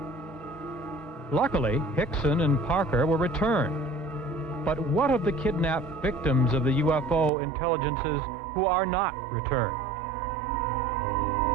Luckily, Hickson and Parker were returned. But what of the kidnapped victims of the UFO intelligences who are not returned?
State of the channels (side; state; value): left; drops out; at 7.3 s